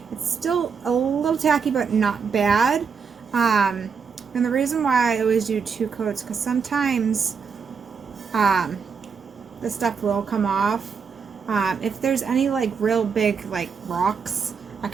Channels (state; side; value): quieter; left; 6.0 dB